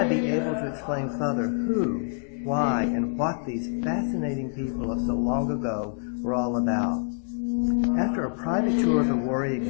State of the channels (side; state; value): right; silent; digital silence